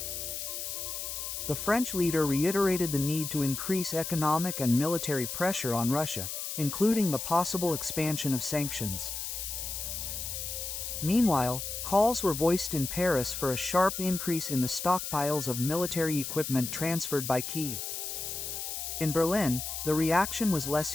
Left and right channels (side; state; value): left; noise; hiss, 5 dB below the sound